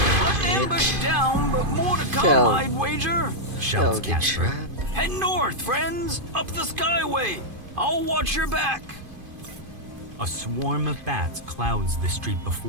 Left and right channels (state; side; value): late; left; 2.5 ms